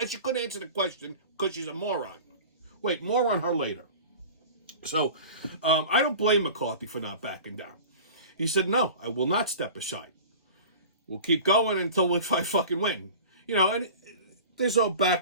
She couldn't answer the question because she's a moron. Wait, more on her later. So, I don't blame McCarthy for not backing down. He said, no, I will not step aside. We'll keep going until I fucking win. You know, and there's all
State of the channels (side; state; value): both; inverted; correlation -0.38